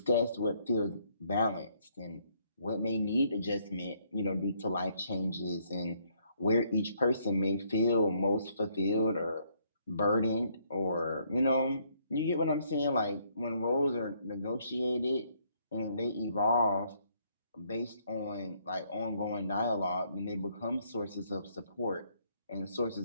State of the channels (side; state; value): both; inverted; correlation -0.69